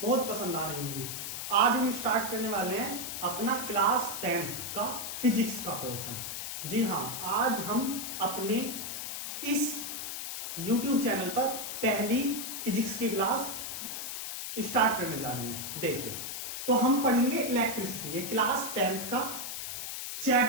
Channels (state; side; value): noise; left; hiss, 5 dB below the sound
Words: बहुत पसंद आ रही होंगी। आज हम स्टार्ट करने वाले हैं अपना क्लास 10th का फिजिक्स का पोर्शन। जी हाँ, आज हम अपने इस यूट्यूब चैनल पर पहली फिजिक्स की क्लास स्टार्ट करने जा रहे हैं। देखिए, तो हम पढ़ेंगे इलेक्ट्रिसिटी। ये क्लास 10th का